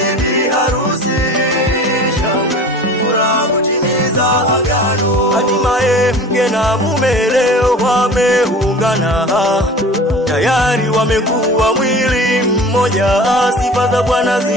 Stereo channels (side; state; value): both; normal; correlation 0.40